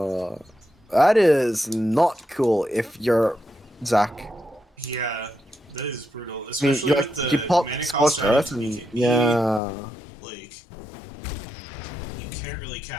that is not cool if you're Zach. Yeah, that is brutal. I mean, Especially with the you pop mana Scorched cost Earth item, and yeah. Like, you can't really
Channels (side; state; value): right; drops out; at 9.6 s